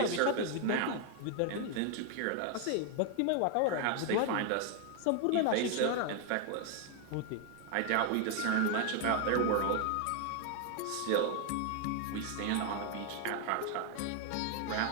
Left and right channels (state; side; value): different; both; correlation 0.00